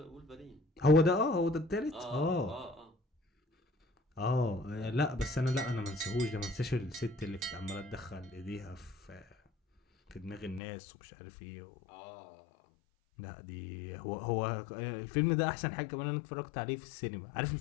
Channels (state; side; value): drops out; right; at 10.6 s